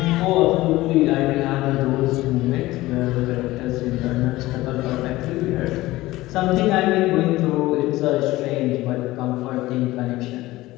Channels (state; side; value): quieter; right; 18.0 dB